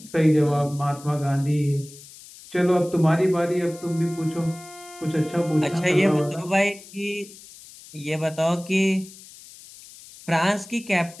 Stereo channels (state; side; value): noise; left; hiss, 19 dB below the sound